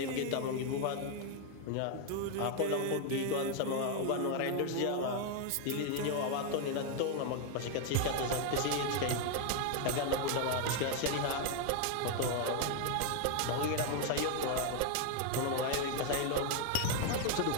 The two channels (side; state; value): both; different; correlation 0.01